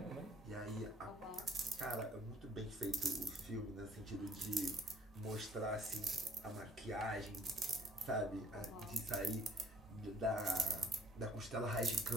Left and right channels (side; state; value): both; normal; correlation 0.58